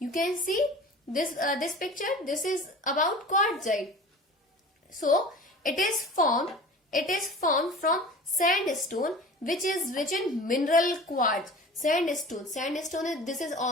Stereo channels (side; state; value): both; normal; correlation 0.39